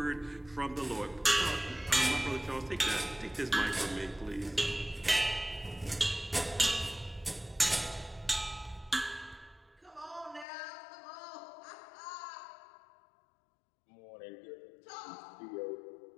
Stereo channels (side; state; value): right; drops out; at 10.5 s